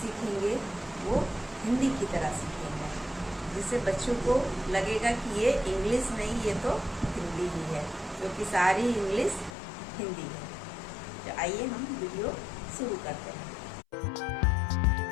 सीखेंगे वो हिंदी की तरह सीखेंगे, जिससे बच्चों को लगेगा कि ये इंग्लिश नहीं, ये तो हिंदी ही है, क्योंकि सारी इंग्लिश हिंदी है। तो आइए हम वीडियो शुरू करते हैं।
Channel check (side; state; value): right; drops out; at 9.5 s